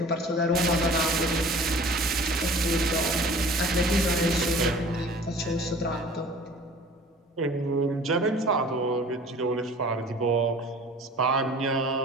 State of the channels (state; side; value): normal; both; correlation 0.45